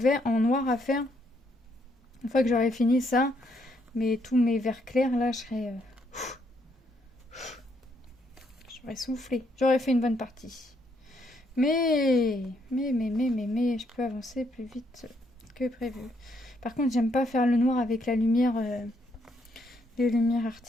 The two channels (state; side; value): normal; both; correlation 0.73